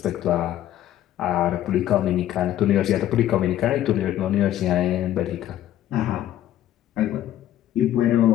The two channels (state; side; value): quieter; right; 12.6 dB